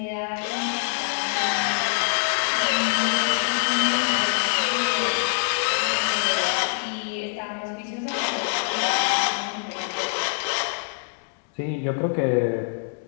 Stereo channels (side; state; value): right; silent; 62 dB below the other